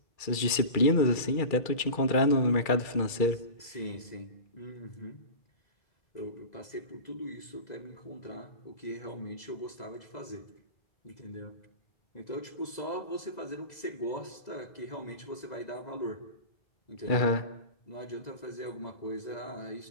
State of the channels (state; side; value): late; right; 2.3 ms